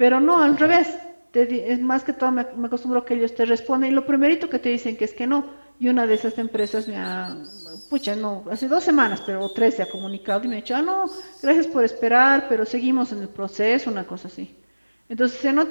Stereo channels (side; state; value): both; inverted; correlation -1.00